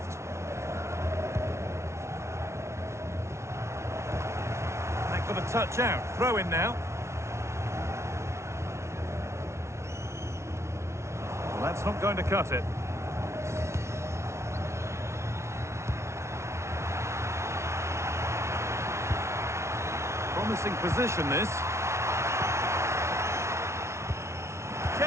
That got a touch out. Throw in now. Well, that's not going to cut it. Promising position, this.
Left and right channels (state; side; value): late; left; 0.13 ms